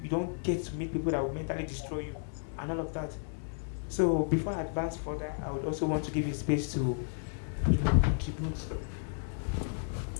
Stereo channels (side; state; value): right; silent; digital silence